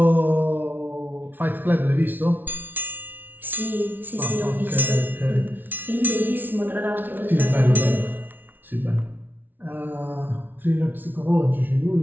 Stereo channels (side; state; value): left; late; 0.089 ms